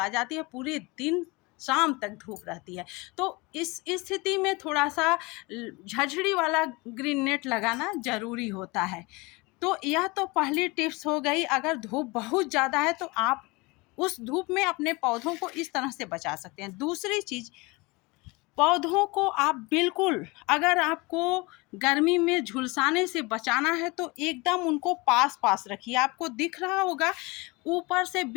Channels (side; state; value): right; quieter; 25.1 dB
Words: जाती है, पूरे दिन शाम तक धूप रहती है। तो इस स्थिति में थोड़ा सा झझड़ी वाला ग्रीन नेट लगाना ज़रूरी होता है। तो यह तो पहली टिप्स हो गई। अगर धूप बहुत ज़्यादा है तो आप उस धूप में अपने पौधों को इस तरह से बचा सकते हैं। दूसरी चीज़, पौधों को आप बिल्कुल, अगर आपको गर्मी में झुलसाने से बचाना है तो एकदम उनको पास पास रखिए। आपको दिख रहा होगा ऊपर से